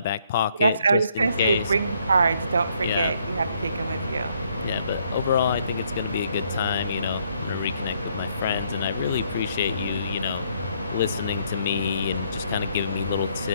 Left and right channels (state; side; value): inverted; both; correlation -0.69